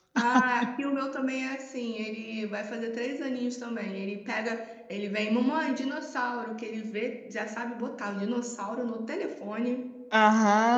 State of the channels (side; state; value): both; identical; correlation 1.00